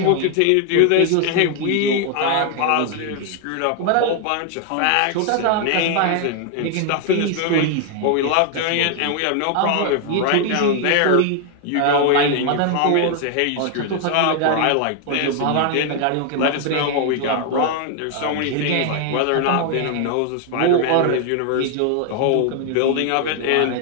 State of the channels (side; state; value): both; different; correlation 0.00